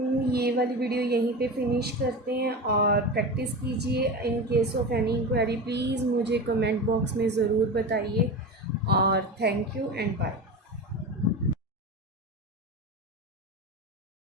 ये वाली वीडियो यहीं पे फिनिश करते हैं और प्रैक्टिस कीजिए। In case of any inquiry please मुझे कमेंट बॉक्स में ज़रूर बताइए और थैंक यू एंड बाय।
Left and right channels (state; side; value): normal; both; correlation 0.25